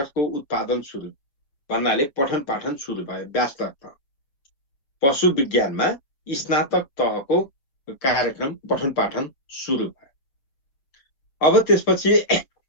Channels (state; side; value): late; right; 6.8 ms